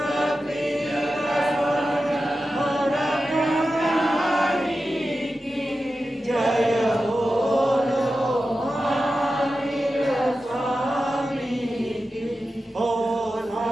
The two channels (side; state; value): both; normal; correlation 0.92